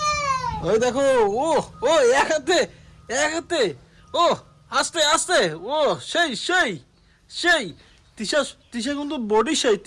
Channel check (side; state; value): both; identical; correlation 1.00